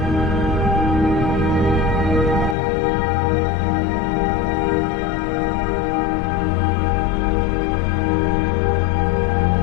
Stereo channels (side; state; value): right; drops out; at 2.6 s